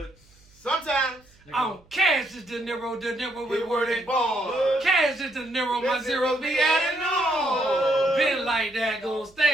Sometimes. I'm Cash is De Niro with word and ball. Cash is De Niro, my zero be adding on. Been like that, gonna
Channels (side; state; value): right; noise; hum, 30 dB below the sound